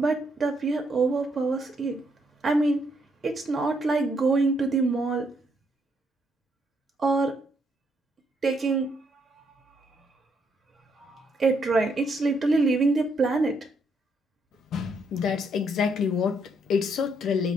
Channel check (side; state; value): both; normal; correlation 0.74